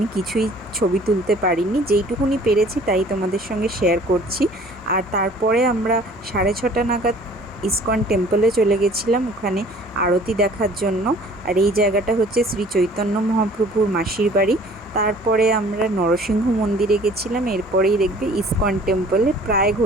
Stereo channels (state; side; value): normal; both; correlation 0.51